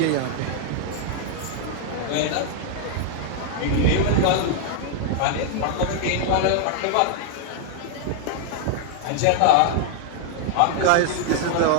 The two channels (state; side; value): different; both; correlation 0.00